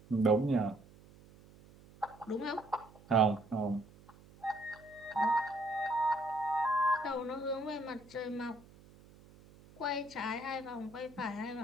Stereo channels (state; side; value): noise; right; hum, 23 dB below the sound